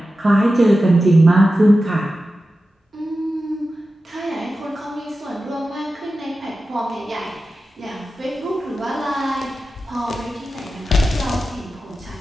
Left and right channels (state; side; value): normal; both; correlation 0.93